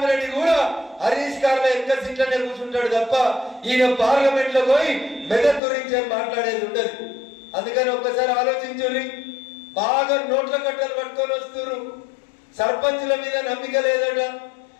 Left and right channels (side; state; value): right; drops out; at 5.6 s